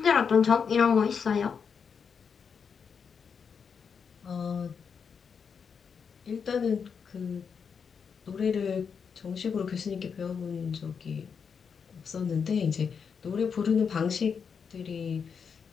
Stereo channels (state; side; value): quieter; right; 6.3 dB